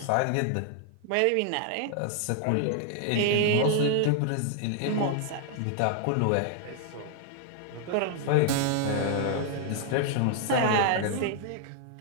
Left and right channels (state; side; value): different; both; correlation 0.00